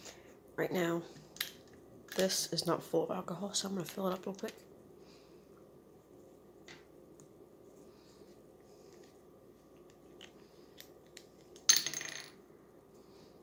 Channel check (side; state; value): both; identical; correlation 1.00